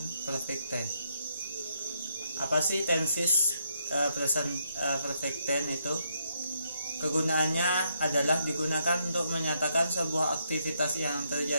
perfect tense. Apa sih tenses present perfect tense itu? Kegunaannya adalah digunakan untuk menyatakan sebuah aktivitas yang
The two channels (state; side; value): inverted; both; correlation -0.76